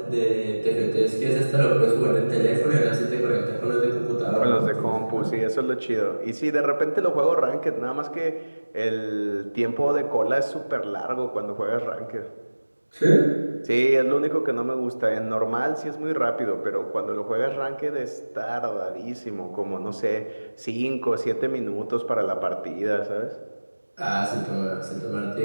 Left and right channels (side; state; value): both; inverted; correlation -1.00